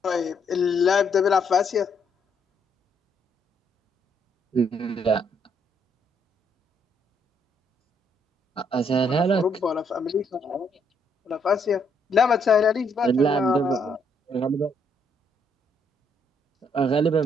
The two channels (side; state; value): both; normal; correlation 0.72